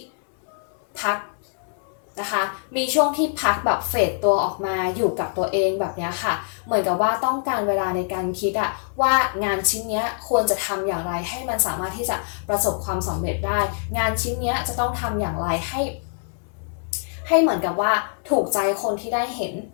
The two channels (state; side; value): silent; right; 63 dB below the other